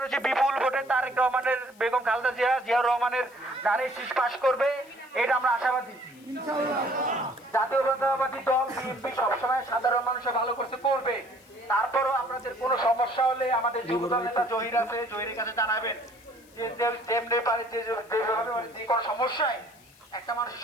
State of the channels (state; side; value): noise; left; hiss, 27 dB below the sound